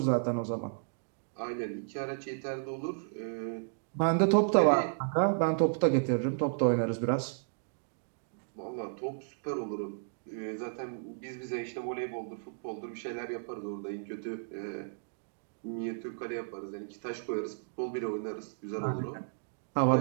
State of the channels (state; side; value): silent; left; digital silence